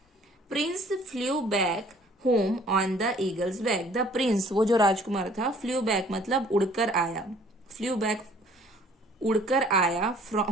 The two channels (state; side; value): normal; both; correlation 0.56